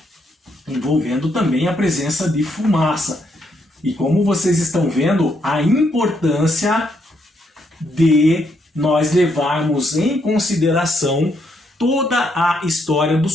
envolvendo também a presença de fumaça. E como vocês estão vendo, a importância de nós levarmos em consideração toda a história do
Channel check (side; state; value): both; normal; correlation 0.76